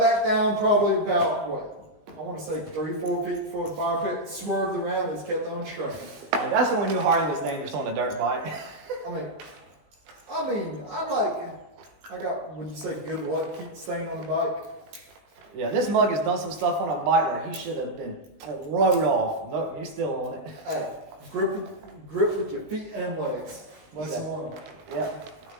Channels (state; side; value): late; left; 19 ms